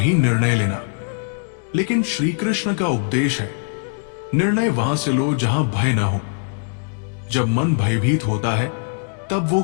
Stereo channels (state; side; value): silent; right; digital silence